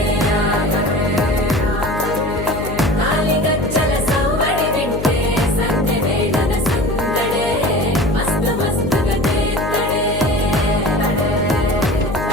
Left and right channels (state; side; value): noise; left; hum, 7 dB below the sound